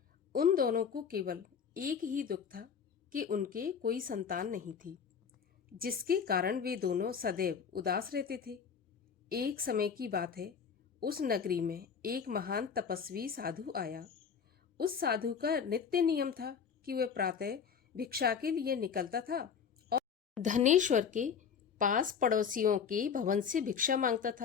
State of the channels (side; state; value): right; quieter; 6.8 dB